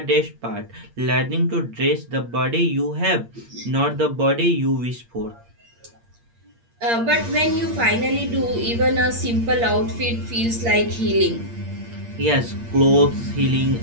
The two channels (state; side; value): late; left; 8.6 ms